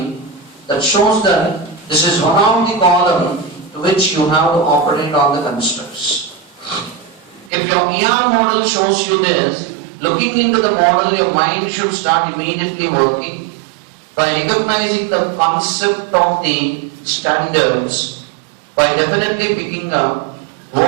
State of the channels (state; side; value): drops out; left; at 7.5 s